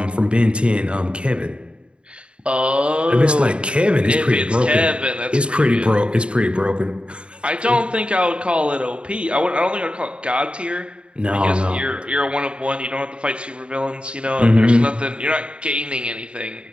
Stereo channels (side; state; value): left; late; 0.056 ms